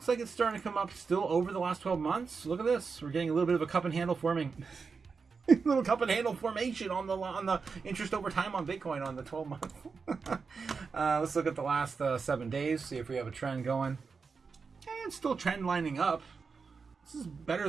like it's starting to come up still over the last 12 months. Look at this. We're getting a little bit of a cup and handle forming. Little cup and handle formation on the interest over time on Bitcoin on the 12 month. Let's look at the last 7 days, see if we have a trend going. It's still trend lining up. This is better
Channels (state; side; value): quieter; left; 5.1 dB